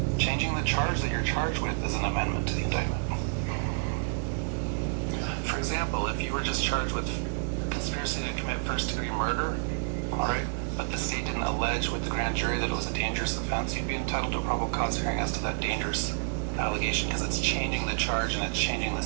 Changing the charge that you're charged with is an amendment to the indictment. For example, if you were just charged with conspiracy to commit first-degree murder, all right, but the state didn't allege with the grand jury that it was a dangerous offense, you'd be entitled to a probable cause hearing as to that dangerous allegation because it's changing the charge and it's changing the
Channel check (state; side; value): silent; left; digital silence